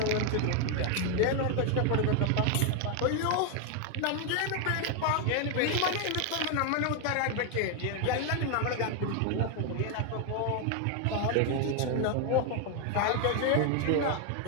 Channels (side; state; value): both; different; correlation 0.01